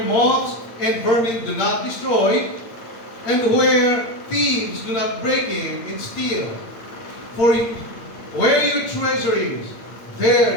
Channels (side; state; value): right; late; 8.7 ms